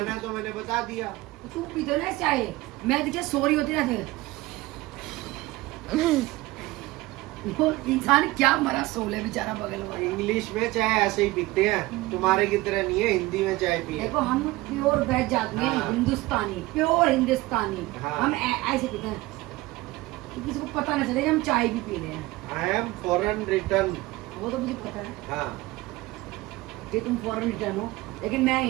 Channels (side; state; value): left; quieter; 19.6 dB